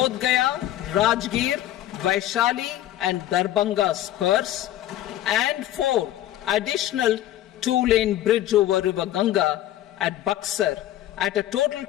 Gaya, Rajgir, Vaishali and Darbhanga spurs, and 4. Additional 2-lane bridge over River Ganga at Buxar at a total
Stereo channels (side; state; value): right; quieter; 13.1 dB